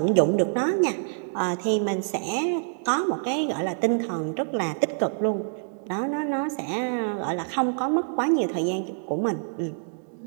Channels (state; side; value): silent; left; digital silence